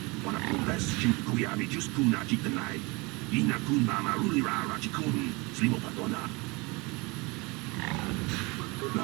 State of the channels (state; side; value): quieter; left; 26.6 dB